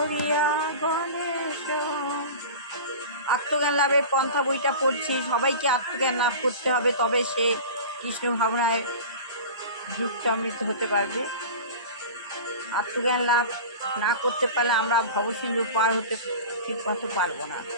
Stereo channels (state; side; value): inverted; both; correlation -0.33